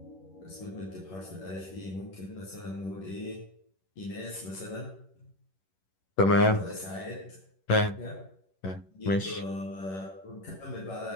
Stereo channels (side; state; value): right; late; 11 ms